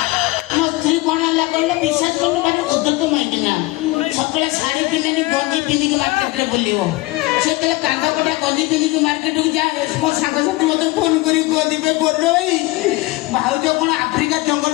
ମୋ ସ୍ତ୍ରୀ କଣ ହେଲା କହିଲେ ବିଶ୍ୱାସ କରୁନି, ଭାରି ଉଦ୍ଧତ ମାଇକିନା ସକାଳେ ଶାଢୀ ପିନ୍ଧେନି, ଗଞ୍ଜି ପିନ୍ଧିକି ମାର୍କେଟରେ ବୁଲିବ। ସେ କହିଲେ କାନ୍ଦ କଟା ଗଞ୍ଜି ପିନ୍ଧିକି ମାର୍କେଟକୁ ଯାଏ। ମୋ ସାଙ୍ଗସାଥି ମତେ ଫୋନ କରି କହିବେ ଭାଇ ଭାଉଜ କଣ ଆଫ୍ରିକା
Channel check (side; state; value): right; quieter; 21.0 dB